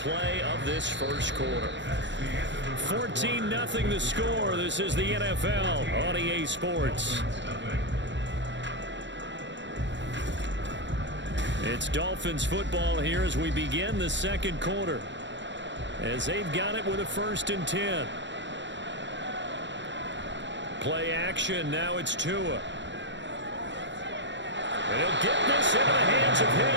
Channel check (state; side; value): late; left; 0.53 ms